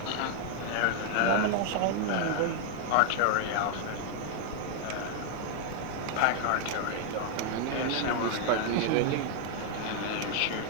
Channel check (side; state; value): both; different; correlation 0.00